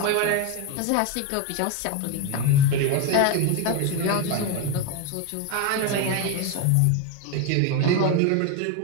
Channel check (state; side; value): different; both; correlation 0.02